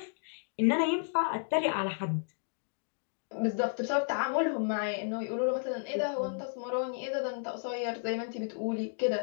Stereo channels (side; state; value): right; silent; digital silence